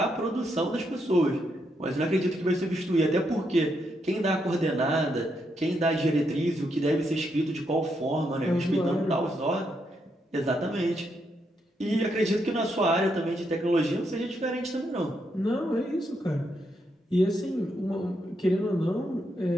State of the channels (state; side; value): normal; both; correlation 0.79